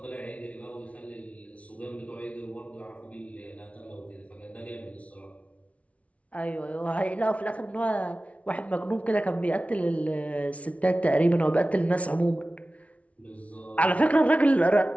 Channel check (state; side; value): late; right; 0.065 ms